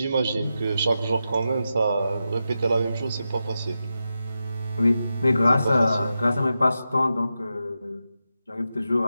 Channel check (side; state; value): both; inverted; correlation -0.89